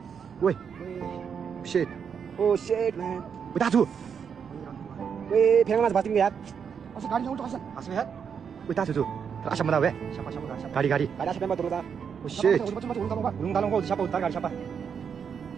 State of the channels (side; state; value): left; quieter; 7.0 dB